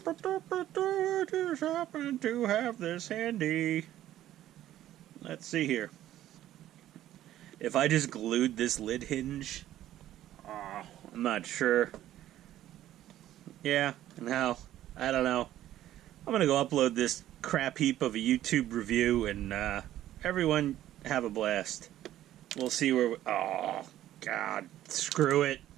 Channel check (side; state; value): left; quieter; 13.1 dB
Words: happen to have this handy. Let's see here. If I just glued this lid hinge, I'm not sure. Yeah, no, I don't know. I'm gonna go upload this crap heap of a YouTube review, and everyone have a blast. We'll see where. Oh God, screw it.